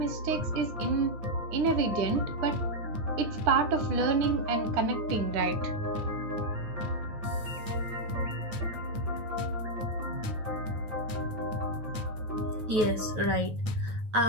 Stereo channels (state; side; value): late; left; 9.3 ms